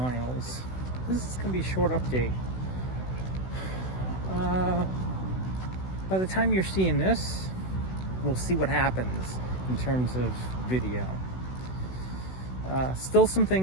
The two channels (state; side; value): late; right; 16 ms